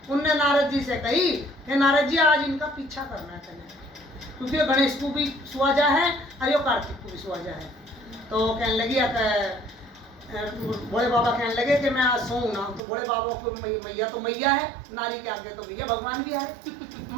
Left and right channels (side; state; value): left; drops out; at 12.8 s